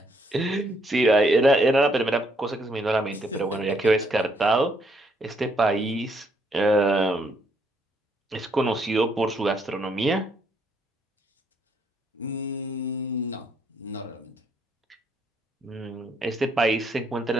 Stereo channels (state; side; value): normal; both; correlation 0.71